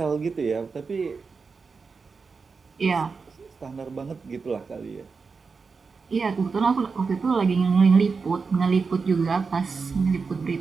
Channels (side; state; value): left; quieter; 4.8 dB